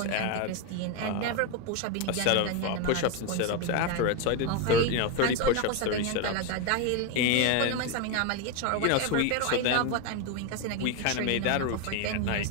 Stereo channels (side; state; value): both; different; correlation 0.02